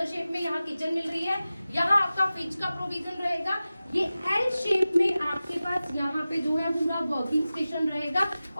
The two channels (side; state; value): both; inverted; correlation -0.96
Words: शेप में यहाँ किचन मिल रही है। यहाँ आपका फ्रिज का प्रोविजन रहेगा। ये एल शेप में आपके पास यहाँ पे जो है पूरा वर्किंग स्टेशन रहेगा